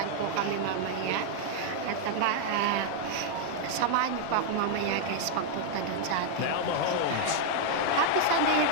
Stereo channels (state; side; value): different; both; correlation 0.00